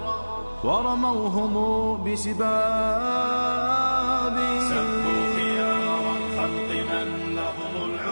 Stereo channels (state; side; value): inverted; both; correlation -1.00